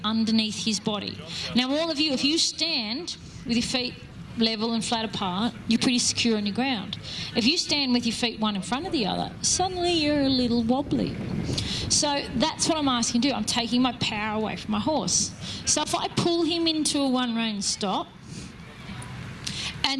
underneath his body. Now, all of you, if you stand with your feet level and flat apart, you're pretty secure on your ground. If you stand with your feet one in front of the other, suddenly you're a little wobbly. So that's what I'm asking to do. I'm taking my power away from my horse. So if I pull him into a one-rein stop,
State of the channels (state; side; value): identical; both; correlation 1.00